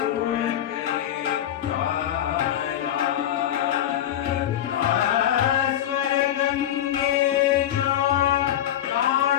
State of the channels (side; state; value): right; quieter; 11.3 dB